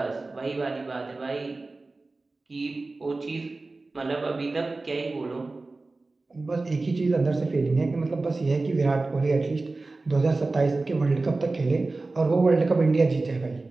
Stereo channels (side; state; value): left; quieter; 3.4 dB